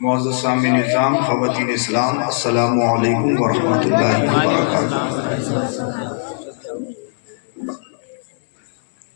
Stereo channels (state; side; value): silent; right; digital silence